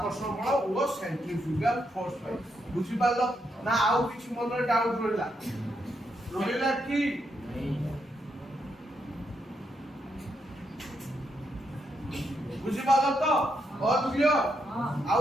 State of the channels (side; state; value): both; normal; correlation 0.80